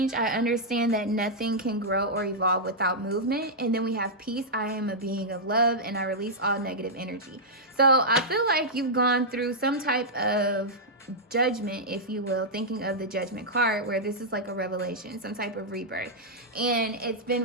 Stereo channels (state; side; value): normal; both; correlation -0.08